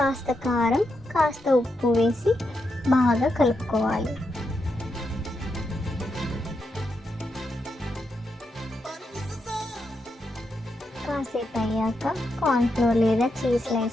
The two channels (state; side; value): normal; both; correlation 0.84